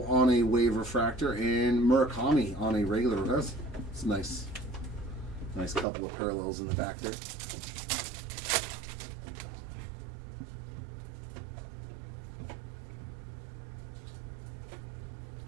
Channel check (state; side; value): drops out; left; at 5.9 s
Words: on a wave refractor and Murakami on a regular. That's nice. Nice couple of parallels in the back there.